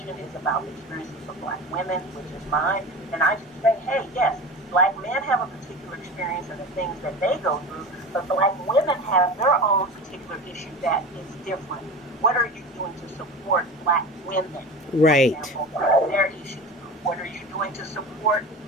is about the experiences of Black women, which is mine, and I just say, hey, yes, Black men have a particular experience and the things that they go through, but Black women have their own particular issue that is different. What are you doing to support Black women? Right. For example, their issues. What are you doing to support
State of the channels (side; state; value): both; normal; correlation 0.32